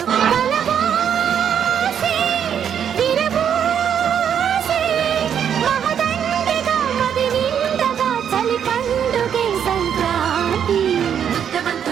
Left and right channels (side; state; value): left; quieter; 8.5 dB